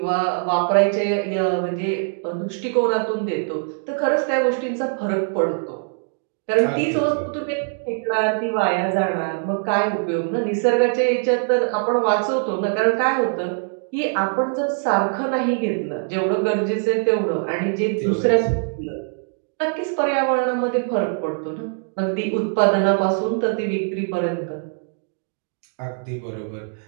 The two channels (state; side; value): silent; left; digital silence